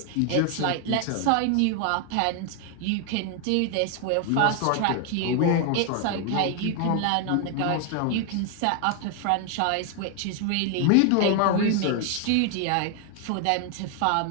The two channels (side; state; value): both; different; correlation 0.00